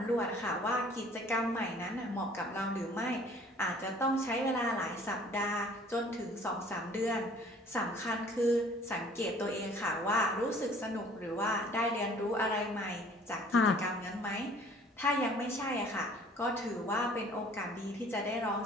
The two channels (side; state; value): both; normal; correlation 0.53